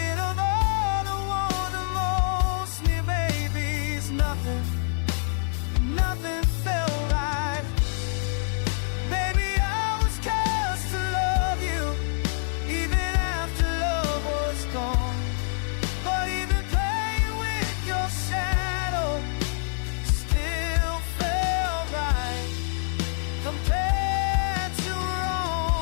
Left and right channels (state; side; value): silent; right; 61 dB below the other